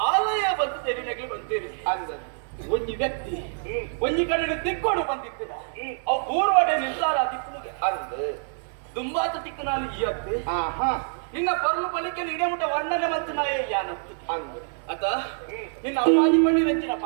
ಆಲಯ ಬಂದು ತೆರಿನಗೆ ಬಂತೀರಿ ಅಂದ ಒಂಜಿ ವ್ಯಕ್ತಿ ಒಂಜಿ ಕಡೆ ತಿಕ್ಕೊಂಡು ಬಂದಿತ್ತಿರ ಅವು ಪೂರ್ವಡೆ ನಿರ್ಧಾರ ತಿಕ್ಕುಗೆ ಅಂದ ದುಂಬಾತ ತಿಕ್ಕನಲ್ಲಿ ಈ ಅತ್ತೆ ನಿನ್ನ ಪರ್ಲು ಪಲಿಕೆ ಇಡಮುಟ ವರ್ಣನೆ ಮತ್ತು ನಾಯ ಯಾನತ್ತು ಅಂದ ಅತ ನಿನ್ನ ಅಪ್ಪಾಜಿ ಬಣ್ಣಿ ರಂಚಿನ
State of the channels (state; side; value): silent; left; 58 dB below the other